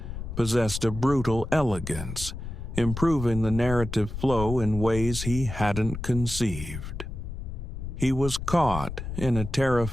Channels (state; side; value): noise; left; rumble, 7 dB below the sound